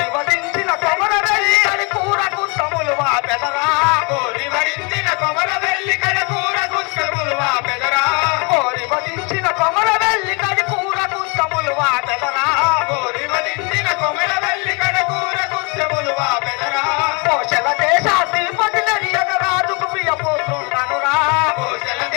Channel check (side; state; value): right; quieter; 31.6 dB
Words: వధించిన కొమర వెళ్ళి అని కూరకు తములు వాపెదరా. కోరి వరించిన కొమర వెళ్ళి కడకూర గుస్తములు వాపెదరా. కోరి వధించిన కొమర వెళ్ళి కడి కూరకు తములు వాపెదరా. కోరి వరించిన కొమర వెళ్ళి కడకూర గుస్తములు వాపెదరా. కోశల దేశాధిపతి నరియగ రాజుకు ప్రియపుత్రుండనురా. కోశల